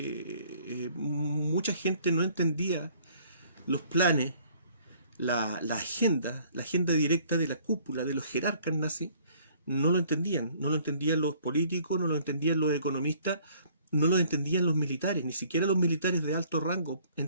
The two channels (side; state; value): both; inverted; correlation -0.58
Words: mucha gente no entendía los planes, la agenda directa de la cúpula, de los jerarcas nazis. No lo entendían los políticos, no lo entendían los economistas, no lo entendían los militares, ni siquiera los militares de alto rango